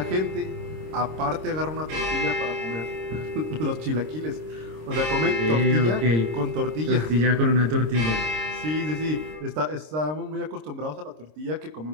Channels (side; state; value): left; late; 26 ms